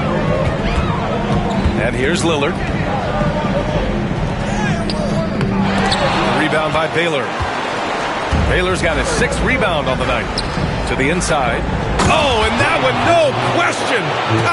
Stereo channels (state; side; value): identical; both; correlation 1.00